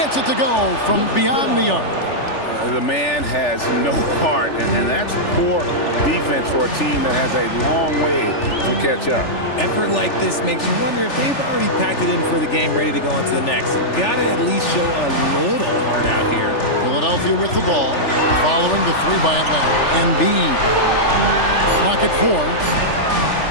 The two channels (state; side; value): late; right; 3.4 ms